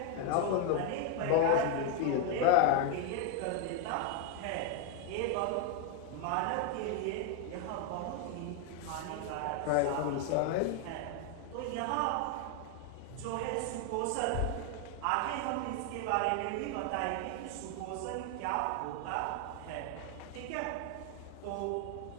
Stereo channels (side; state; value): both; different; correlation 0.01